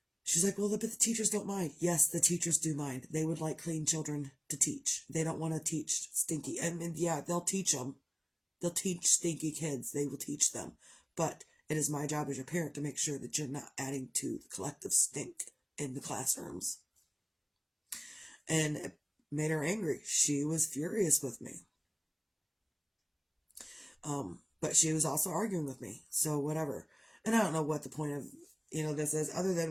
She's like, well, but the teachers don't mind. Yes, the teachers do mind. They would like clean children to teach. They don't want to teach stinky. And yeah, they'll teach them. They'll teach stinky kids. They will teach them. But it is my job as your parent to make sure that you're not adding to the collective stink in the classrooms. And it made her angry. She was furious with me. But she was also arguing with me. So whatever. And I don't know what the point of this is, other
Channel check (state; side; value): identical; both; correlation 1.00